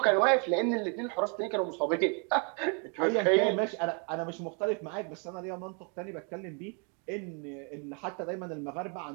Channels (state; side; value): quieter; left; 37.7 dB